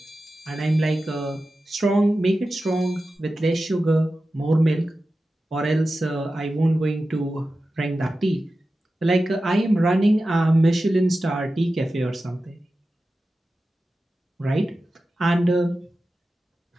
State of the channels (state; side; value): normal; both; correlation 0.93